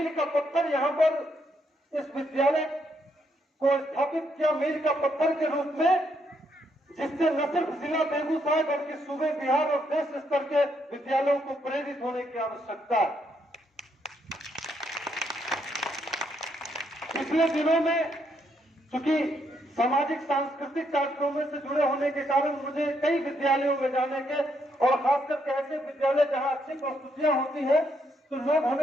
का पत्थर यहाँ पर इस विद्यालय को स्थापित किया, मील का पत्थर के रूप में, जिससे न सिर्फ जिला बेगूसराय बल्कि सूबे बिहार और देश स्तर के विद्यालयों को प्रेरित होने की आवश्यकता है। पिछले दिनों में चूंकि सामाजिक सांस्कृतिक कार्यक्रमों से जुड़े होने के कारण मुझे कई विद्यालयों में जाने के, और खासकर ऐसे विद्यालय जहां अच्छी प्रस्तुतियां होती है तो लोग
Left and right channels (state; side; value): normal; both; correlation 0.75